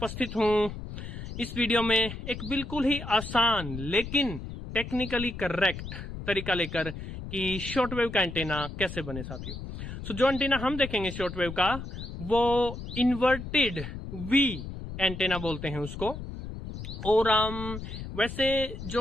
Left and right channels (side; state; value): left; noise; rumble, 9 dB below the sound